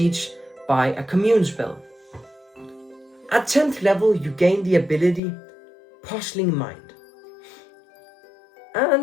by a commune spell. At 10th level, you gain the ability Puzzling Mind.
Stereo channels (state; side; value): drops out; right; at 5.2 s